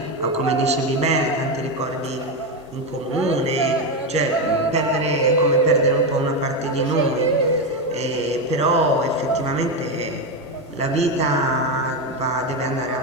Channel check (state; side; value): normal; both; correlation 0.11